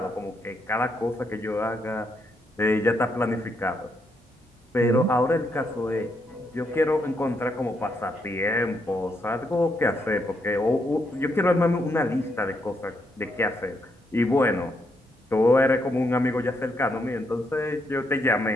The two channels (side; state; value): both; normal; correlation 0.78